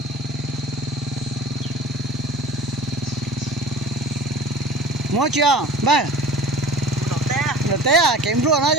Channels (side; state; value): both; normal; correlation 0.41